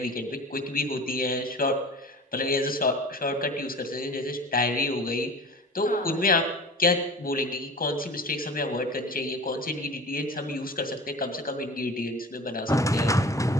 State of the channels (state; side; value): normal; both; correlation 0.38